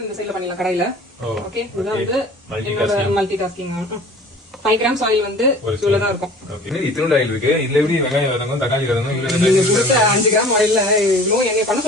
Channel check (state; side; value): normal; both; correlation 0.45